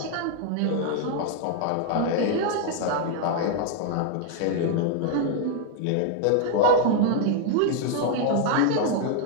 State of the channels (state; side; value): different; both; correlation 0.00